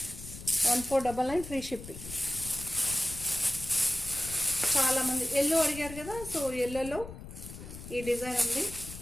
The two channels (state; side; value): noise; left; rumble, 12 dB below the sound